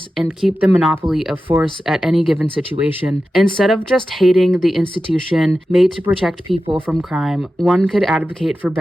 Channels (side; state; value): both; normal; correlation 0.93